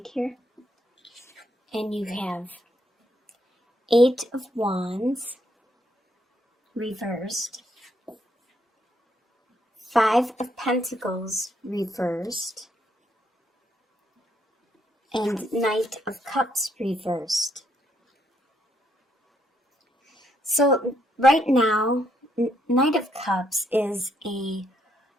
here. And you have 8 of Wands reversed, 5 of Pentacles reversed, and Knight of Cups reversed. So right now, Knight of Cups is a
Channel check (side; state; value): both; normal; correlation 0.74